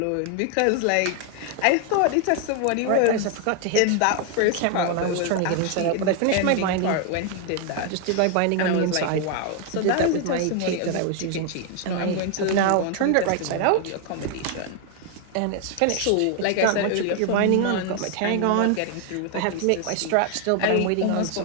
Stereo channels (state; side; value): different; both; correlation 0.00